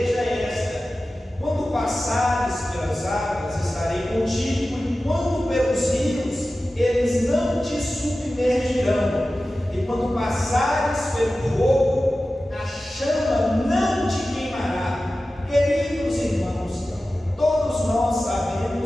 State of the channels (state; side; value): normal; both; correlation 0.95